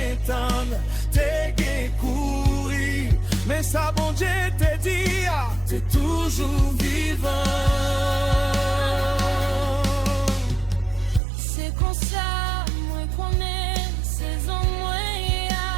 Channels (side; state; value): left; drops out; at 11.2 s